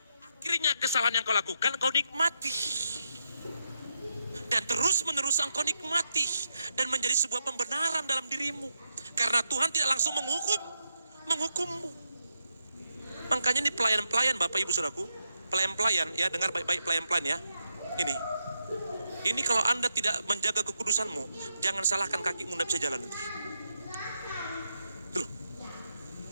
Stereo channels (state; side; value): inverted; both; correlation -0.83